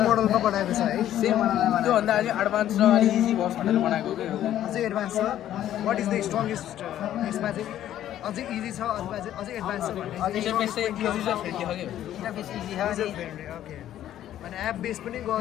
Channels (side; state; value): right; quieter; 12.0 dB